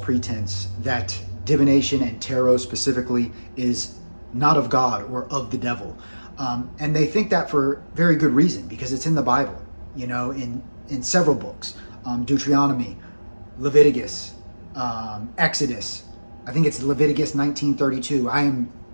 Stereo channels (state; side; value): inverted; both; correlation -1.00